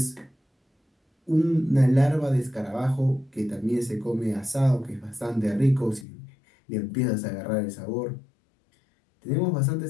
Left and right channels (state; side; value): drops out; right; at 6.1 s